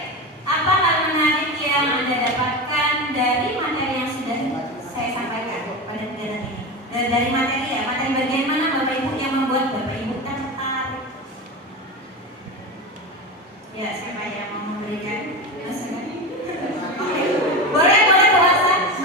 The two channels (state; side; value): normal; both; correlation 0.22